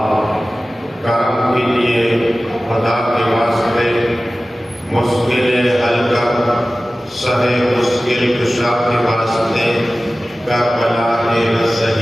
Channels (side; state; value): both; normal; correlation 0.96